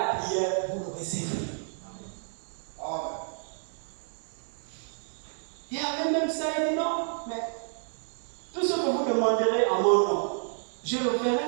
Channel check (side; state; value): left; silent; digital silence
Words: prière, vous le recevrez. Et avec même ça, il dit non, mais tout ce que vous demanderez en mon nom, je le ferai.